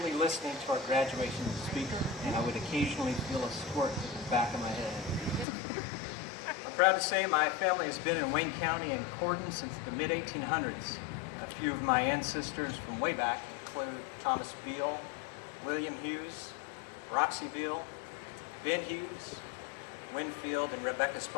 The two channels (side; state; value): right; drops out; at 5.5 s